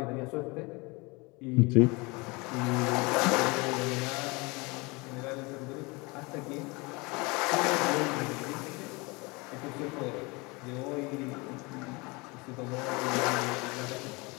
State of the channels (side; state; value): right; quieter; 26.3 dB